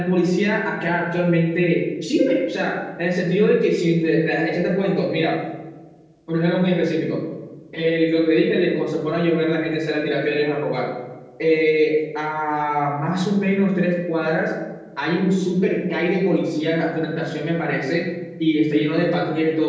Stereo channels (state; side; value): identical; both; correlation 1.00